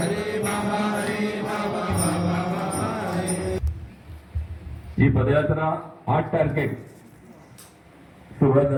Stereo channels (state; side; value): identical; both; correlation 1.00